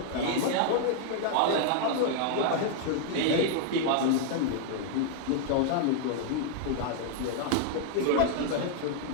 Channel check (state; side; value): different; both; correlation 0.00